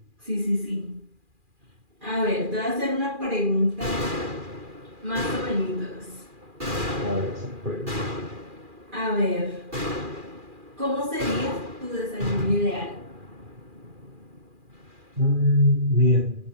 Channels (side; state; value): left; late; 2.4 ms